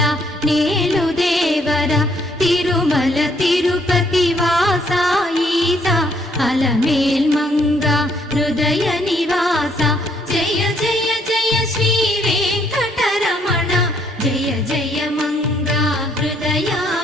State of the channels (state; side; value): normal; both; correlation 0.68